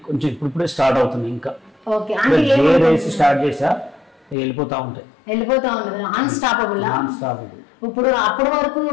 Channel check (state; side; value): drops out; right; at 4.4 s